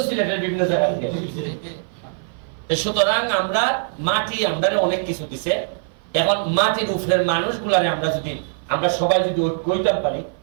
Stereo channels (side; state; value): left; silent; 56 dB below the other